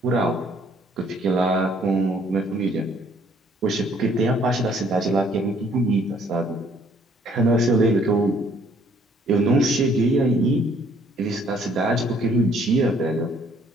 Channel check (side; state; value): both; normal; correlation 0.62